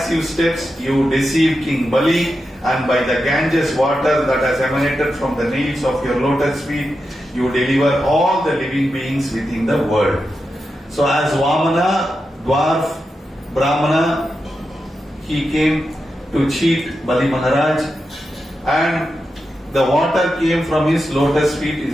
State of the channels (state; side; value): normal; both; correlation 0.89